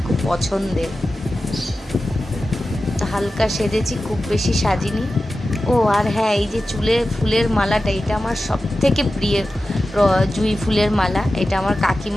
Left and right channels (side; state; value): both; normal; correlation 0.94